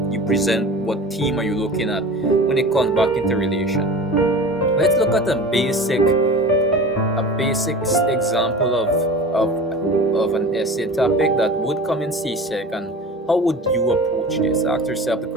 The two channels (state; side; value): normal; both; correlation 0.36